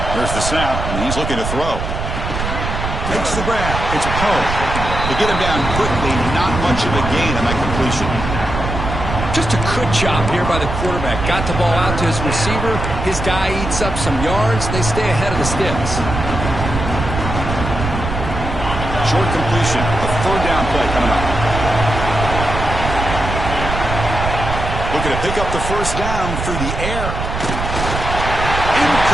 There's the snap, and he's looking to throw. Makes the grab. It's Poe. They get him down quickly. Not much of a gain on that completion. Just a good job here by the quarterback. Got the ball out to his receiver. His guy eats up some yards. They stay ahead of the sticks. Short completion. A third down play coming up. Looking to pick up the first down through the air.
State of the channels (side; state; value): right; noise; rumble, 4 dB below the sound